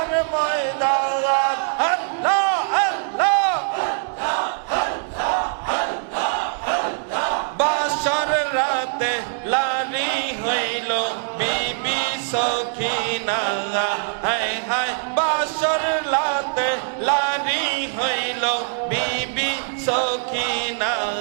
ময়দান আল্লাহ আল্লাহ বাসর রাতে লারি হইল বিবি সখিনা হায় হায় বাসর রাতে লারি হইল বিবি সখিনা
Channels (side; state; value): left; silent; digital silence